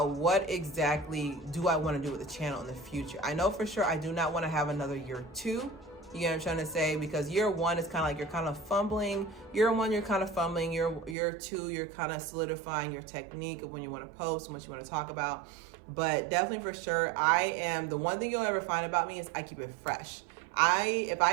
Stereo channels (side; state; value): left; drops out; at 11.2 s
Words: do I want to do with the channel in the future. I know for sure I do not want to have another year 2. You know what I'm trying to say? Because year 1 is kind of like you're kind of fumbling. Year 1, you're kind of fumbling. Year 2, you're kind of solidifying your technique of when you want to post and what you want to talk about. But definitely for sure, the one thing you'll ever find about me is I keep it fresh. If